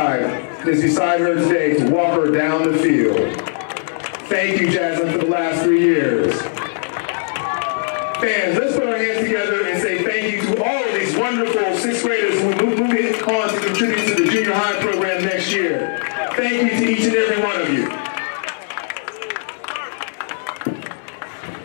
and is beside her today to walk her down the field. Thank you, Jaslyn, for the last 3 years. Fans, let's put our hands together and say thank you to all of these wonderful 6th graders who will move on to contribute to the junior high program next year. Thank you to each and every one of you.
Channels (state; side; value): silent; right; digital silence